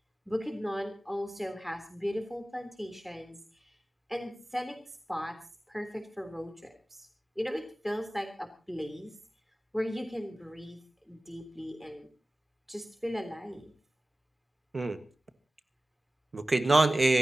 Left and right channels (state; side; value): normal; both; correlation 0.97